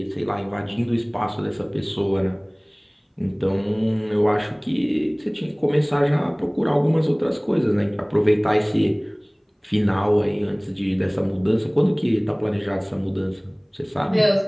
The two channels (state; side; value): identical; both; correlation 1.00